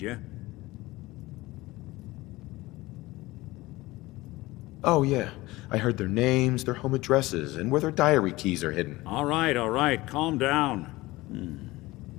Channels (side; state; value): right; quieter; 19.7 dB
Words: you? Oh, yeah. I heard their names, their home addresses, and where their diary keys are hidden. All right. Calm down.